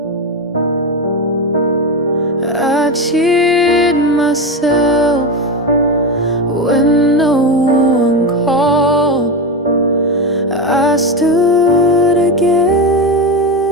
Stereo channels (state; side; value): normal; both; correlation 0.16